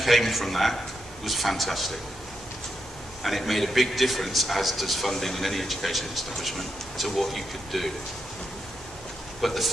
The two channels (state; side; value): normal; both; correlation 0.84